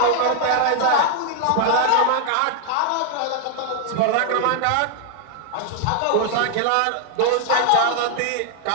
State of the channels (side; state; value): both; different; correlation 0.00